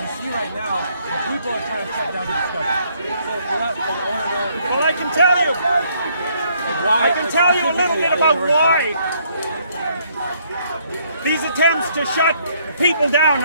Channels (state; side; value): inverted; both; correlation -0.68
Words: see right now, people are trying to shut down the discussion. So Well, I can tell you a little bit about why these attempts to shut people down